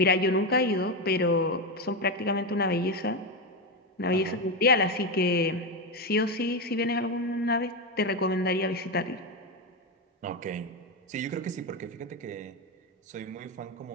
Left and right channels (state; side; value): normal; both; correlation 0.12